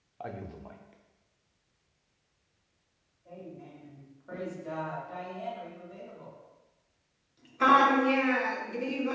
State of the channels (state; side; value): identical; both; correlation 1.00